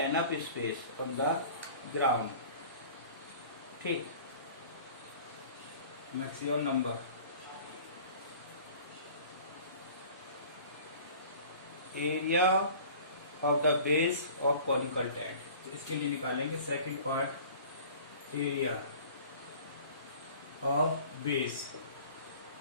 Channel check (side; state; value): both; inverted; correlation -0.45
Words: space on the ground. ठीक, maximum number area of the base of conical tent. तो इसके लिए निकालेंगे second part, area of base.